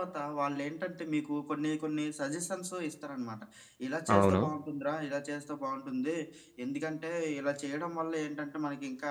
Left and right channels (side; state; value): both; identical; correlation 1.00